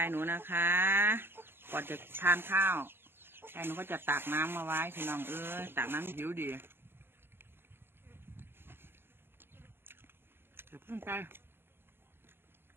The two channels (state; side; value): late; left; 0.11 ms